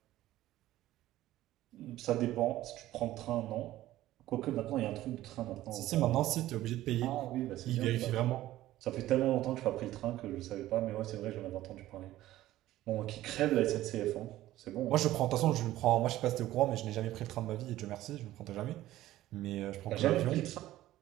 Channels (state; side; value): quieter; left; 15.0 dB